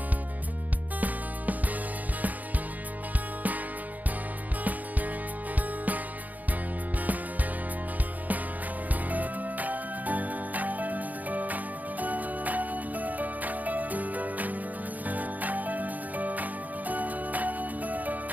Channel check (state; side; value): late; left; 0.080 ms